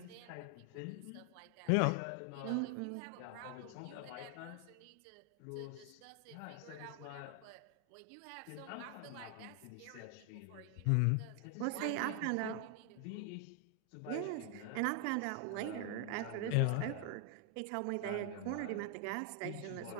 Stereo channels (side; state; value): both; different; correlation 0.00